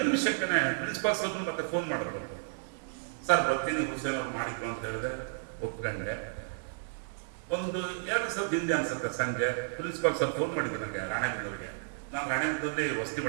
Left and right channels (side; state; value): left; silent; digital silence